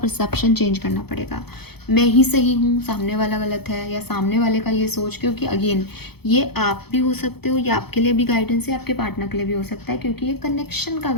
चेंज करना पड़ेगा। मैं ही सही हूँ, सामने वाला गलत है, या सामने वाले का ये सोच, क्योंकि अगेन ये आप भी हो सकते हो, ये आपके लिए भी गाइडेंस है, आपके पार्टनर के लिए भी हो सकता है, क्योंकि ये कनेक्शन का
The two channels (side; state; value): right; late; 0.97 ms